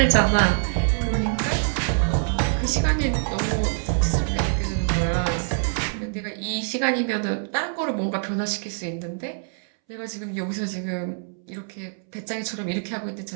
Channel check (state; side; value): silent; left; 62 dB below the other